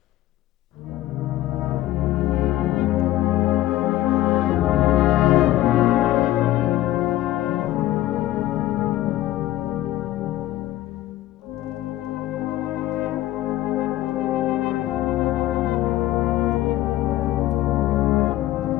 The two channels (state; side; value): quieter; right; 14.8 dB